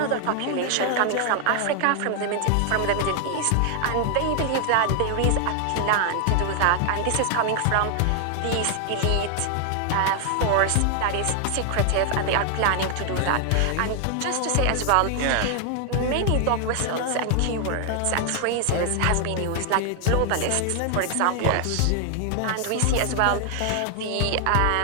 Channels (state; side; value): different; both; correlation 0.00